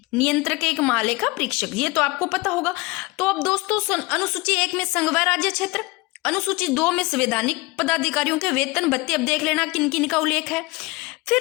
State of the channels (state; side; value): quieter; right; 23.7 dB